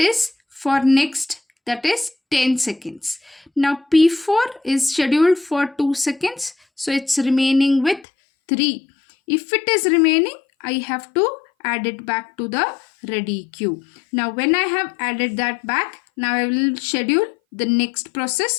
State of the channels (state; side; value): drops out; right; at 8.1 s